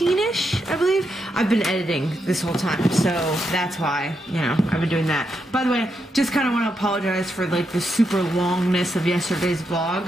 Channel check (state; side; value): normal; both; correlation 0.83